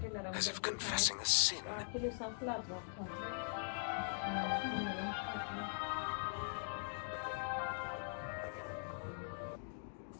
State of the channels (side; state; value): right; silent; digital silence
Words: as if confessing a sin.